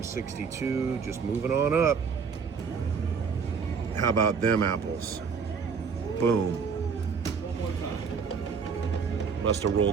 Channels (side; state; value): left; quieter; 5.9 dB